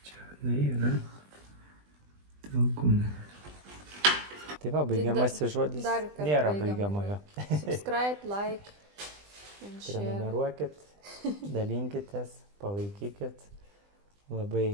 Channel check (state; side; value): late; left; 20 ms